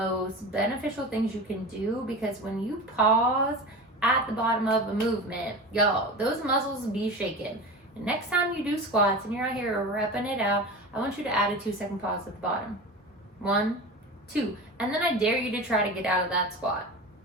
beneficial things you can do, because when you pause at the bottom of a movement, y'all, those muscles be shaking. And next time you do squats and you're out here repping it out, I want you to add a 2-second pause at the bottom. 1, 2. And then I dare you to try to get out of that squat.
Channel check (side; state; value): both; normal; correlation 0.30